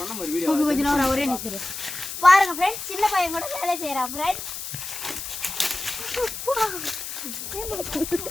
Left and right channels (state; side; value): noise; left; hiss, 7 dB below the sound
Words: ஒரே நிற்கிறேன் பாருங்க ஃப்ரெண்ட்ஸ். சின்ன பையன் கூட வேலை செய்யறான் ஃப்ரெண்ட்ஸ்.